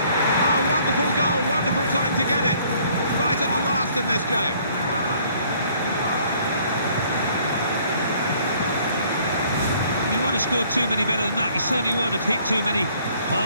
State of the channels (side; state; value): both; inverted; correlation -0.60